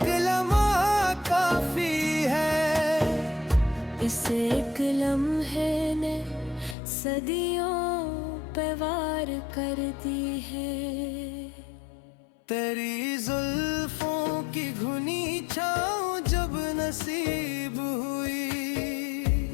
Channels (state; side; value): drops out; right; at 6.8 s